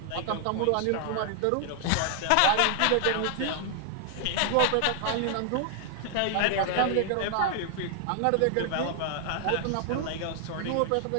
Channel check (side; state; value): both; different; correlation 0.00